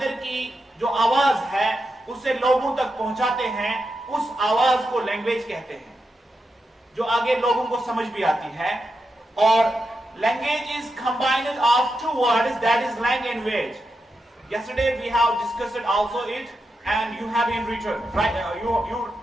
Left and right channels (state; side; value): normal; both; correlation 0.87